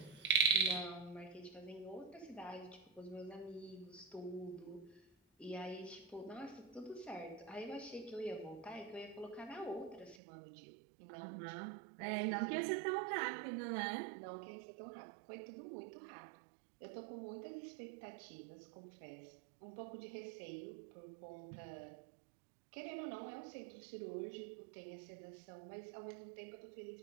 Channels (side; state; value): left; drops out; at 10.2 s